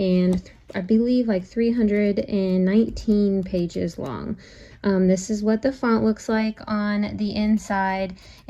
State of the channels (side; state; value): both; identical; correlation 1.00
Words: I believe like 319 pages long. This is what the font looks like on the inside,